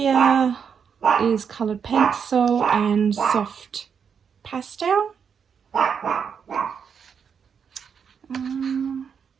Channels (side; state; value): left; quieter; 6.9 dB